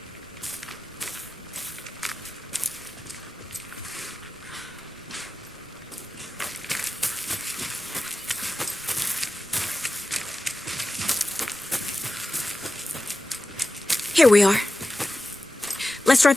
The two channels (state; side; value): noise; left; rumble, 28 dB below the sound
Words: Here we are. Let's drive